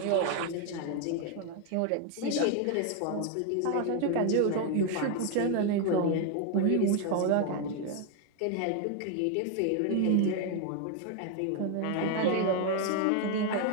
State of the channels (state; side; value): different; both; correlation 0.01